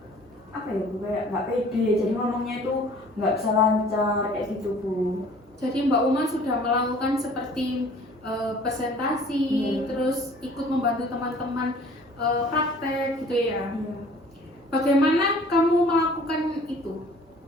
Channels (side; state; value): both; normal; correlation 0.51